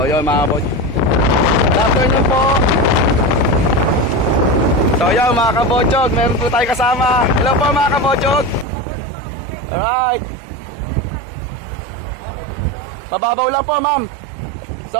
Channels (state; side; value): drops out; left; at 8.7 s